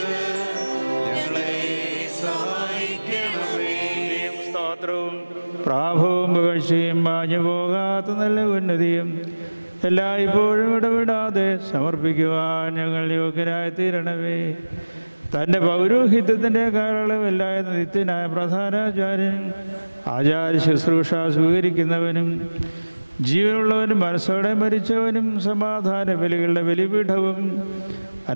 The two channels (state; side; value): inverted; both; correlation -1.00